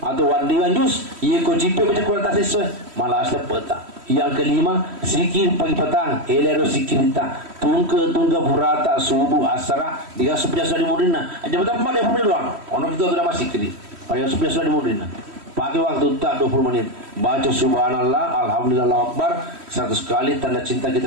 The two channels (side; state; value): left; late; 3.1 ms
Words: wandiwan juz ia ko jipe baca Quran tak sesuai malah sepeta yang kelima zikir pagi petang elero zikirita tungke burata subuh asra diga sebelah di mudina aja betul pada pun doang ono kita sudah masih kiri pada sebelah di mudina pakai waktu tak 20 menit baca subhanallah alhamdulillah akbar 100 kali tanda cinta